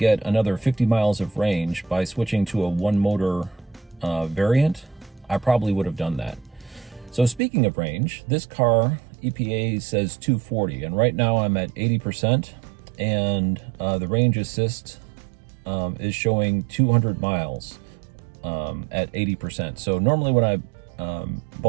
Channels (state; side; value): drops out; left; at 7.4 s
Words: another 50 miles of range by switching to a one motor variant, I probably would have done that. So speaking of range, this car, EPA says 240, and right now I'm at 80%, and the range assist is showing 200 miles at 80%. So normally when I